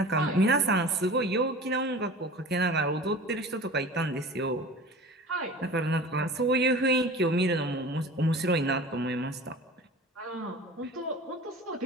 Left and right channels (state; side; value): normal; both; correlation 0.38